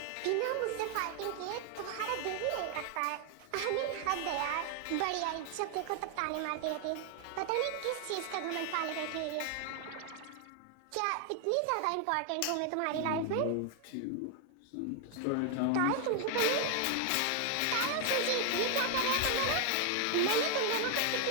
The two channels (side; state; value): both; different; correlation 0.00